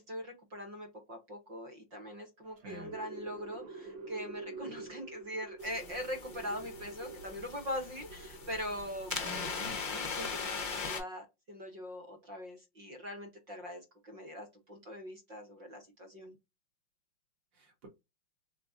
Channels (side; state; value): left; late; 5.6 ms